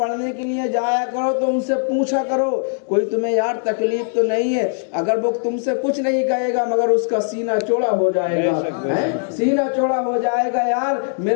کے لیے جایا کرو تو ان سے پوچھا کرو کوئی تمہیں یار تکلیف تو نہیں ہے؟ اگر وہ تم سے کچھ نہیں کہے گا مگر اس کا سینہ چوڑا ہو جائے گا، سینہ چوڑا ہو جائے گا۔ یار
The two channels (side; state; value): right; silent; digital silence